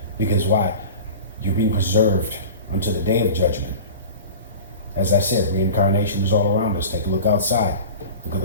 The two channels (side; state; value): both; inverted; correlation -0.35